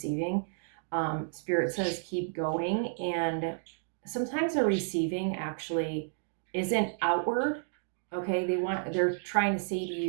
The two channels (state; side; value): silent; left; digital silence